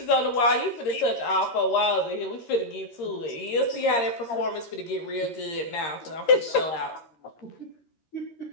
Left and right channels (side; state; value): right; late; 13 ms